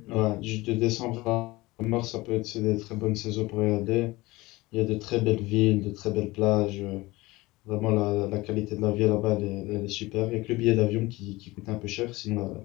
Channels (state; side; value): quieter; right; 20.6 dB